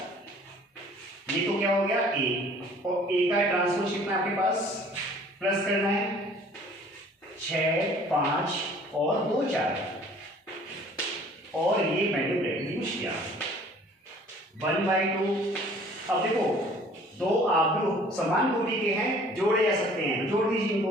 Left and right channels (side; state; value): both; normal; correlation 0.53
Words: ये तो क्या हो गया a, और a का ट्रांसपोज कितना आपके पास प्लस करना है 6 5 और 2 4 और ये वैल्यू यूज किया 1/2। अब देखो दो आव्यूह समान कोटि के हैं, जोड़े जा सकते हैं, जोड़ दीजिए इनको।